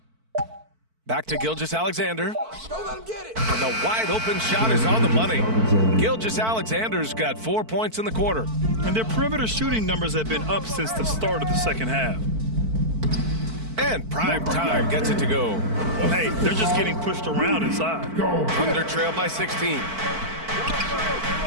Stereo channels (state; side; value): late; left; 4.5 ms